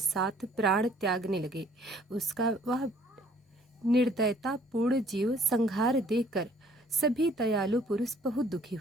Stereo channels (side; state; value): both; normal; correlation 0.59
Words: प्राण त्यागने लगे। उसका वह निर्दयतापूर्ण जीव संहार देखकर सभी दयालु पुरुष बहुत दुखी